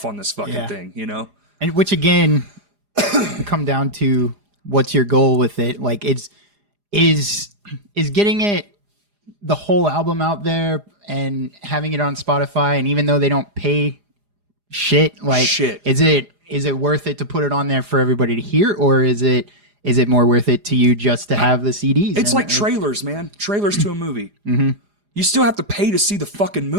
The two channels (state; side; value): late; left; 4.9 ms